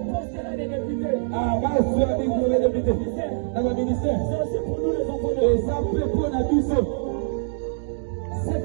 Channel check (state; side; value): silent; left; digital silence